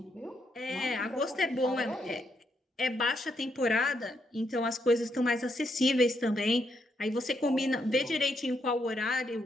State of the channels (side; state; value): both; normal; correlation 0.78